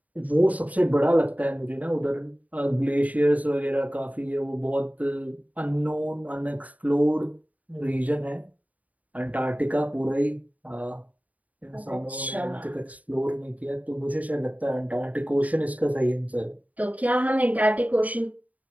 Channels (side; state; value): left; late; 0.073 ms